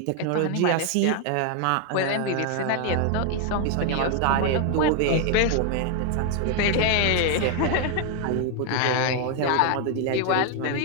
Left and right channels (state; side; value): different; both; correlation 0.01